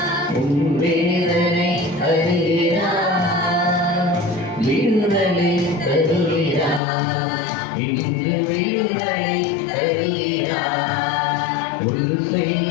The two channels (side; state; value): right; drops out; at 6.8 s